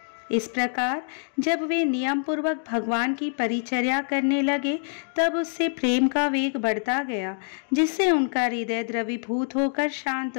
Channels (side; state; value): right; silent; 61 dB below the other